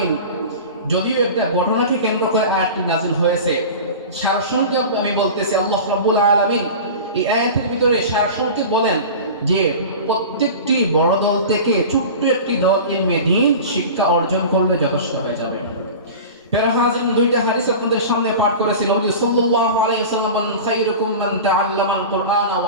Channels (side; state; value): both; inverted; correlation -0.33